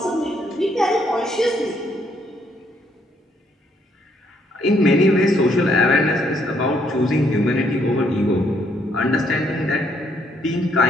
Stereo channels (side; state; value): both; normal; correlation 0.70